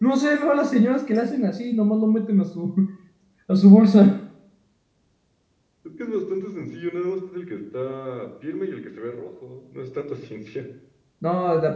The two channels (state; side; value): identical; both; correlation 1.00